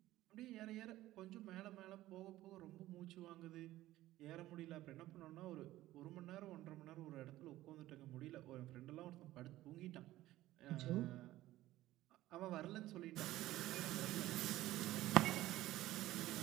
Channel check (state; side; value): quieter; left; 15.7 dB